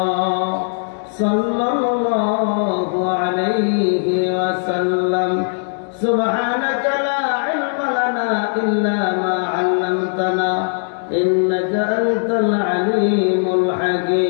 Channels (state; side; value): silent; right; digital silence